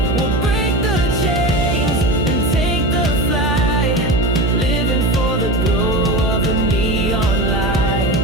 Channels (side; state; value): right; noise; hum, 1 dB below the sound